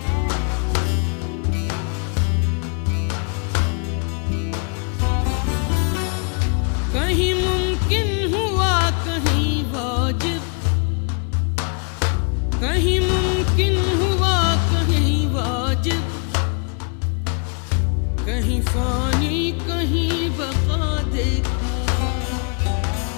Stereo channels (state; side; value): quieter; right; 39.2 dB